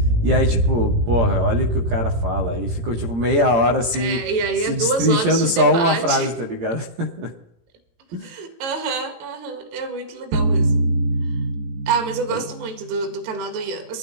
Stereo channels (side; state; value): left; late; 17 ms